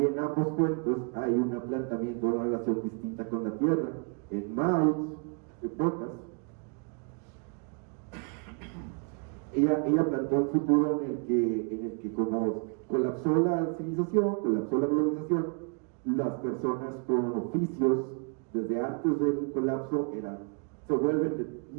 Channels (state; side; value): quieter; left; 38.5 dB